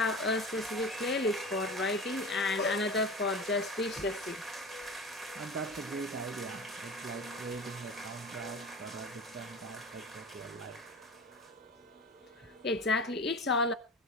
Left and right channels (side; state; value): both; normal; correlation 0.33